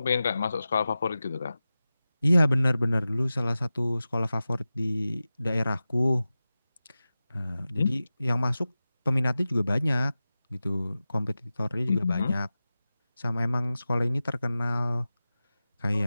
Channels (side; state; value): both; inverted; correlation -0.95